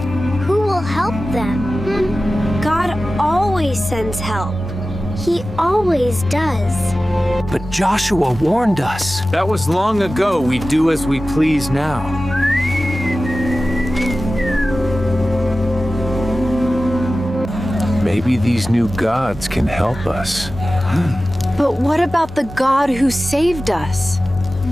who will help them? God always sends help. He always does. But Joshua warned us. That was long ago. We do as we please now. Maybe these new gods can help us. But what about the God who saved us?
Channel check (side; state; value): both; normal; correlation 0.95